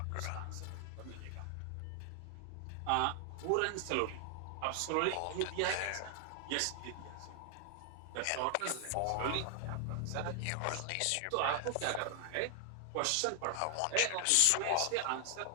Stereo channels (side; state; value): both; different; correlation 0.00